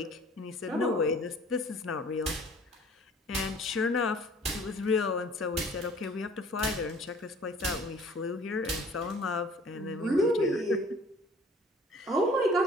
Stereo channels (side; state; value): both; normal; correlation 0.51